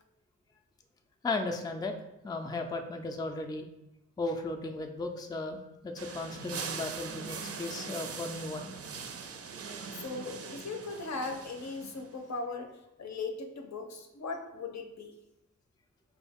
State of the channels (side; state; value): both; normal; correlation 0.32